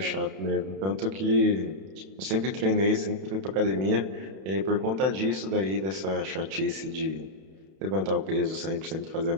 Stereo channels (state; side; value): late; left; 31 ms